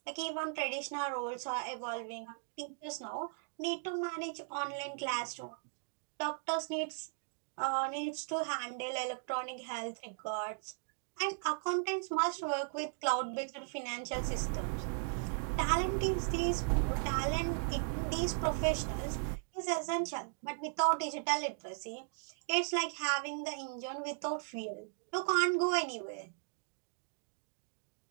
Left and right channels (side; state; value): left; silent; digital silence